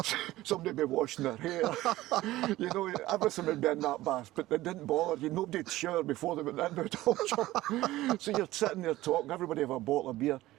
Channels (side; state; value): left; quieter; 16.7 dB